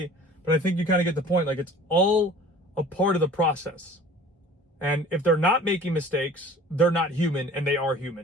but I think you kind of get the point. Like, it's all a part of the process. And if they're not making mistakes, they're not human, and they are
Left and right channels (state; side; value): normal; both; correlation 0.46